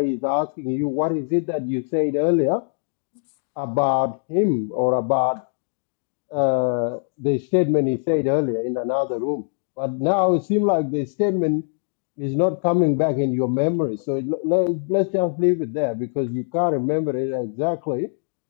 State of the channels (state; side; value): silent; right; digital silence